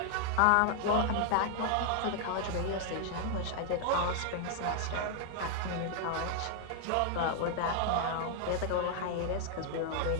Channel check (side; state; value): both; different; correlation 0.00